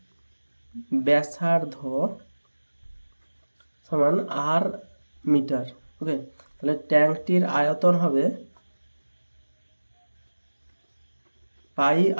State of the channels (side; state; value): both; inverted; correlation -1.00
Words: সমান আর মিটার। ওকে, তাহলে ট্যাঙ্কটির আয়তন হবে পাই